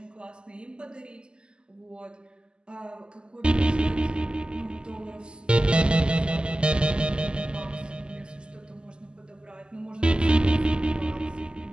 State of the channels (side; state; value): left; late; 0.049 ms